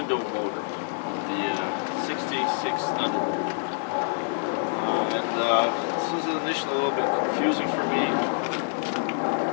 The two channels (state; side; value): silent; right; 61 dB below the other